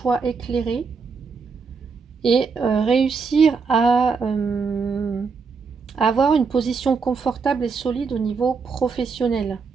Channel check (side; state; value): left; quieter; 5.1 dB